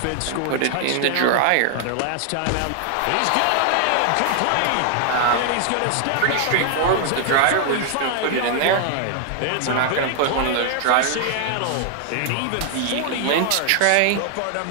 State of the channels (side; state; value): both; different; correlation 0.00